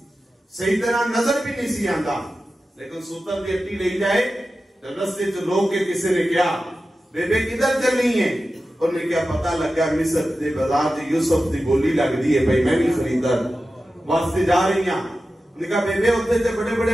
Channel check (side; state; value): both; normal; correlation 0.93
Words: صحیح طرح نظر بھی نہیں سی آندا لیکن سوتر دی اٹی لے جائے تو رستے جو لوگ کے کسی نے کیا بیبے کدھر چلنی ہے انہوں نے کیا پتہ لگا مصر دے بازار جی یوسف دی بولی لگ دی ہے بھائی میں بھی خریدار واسطے جا رہی ہیں انہوں نے کہا بیبے ہوتے تھے بڑے